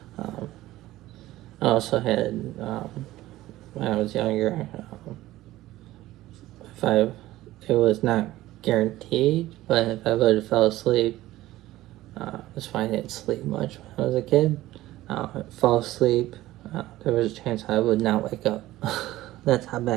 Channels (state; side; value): quieter; left; 16.1 dB